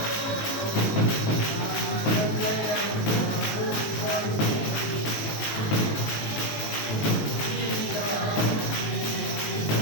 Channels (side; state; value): right; late; 19 ms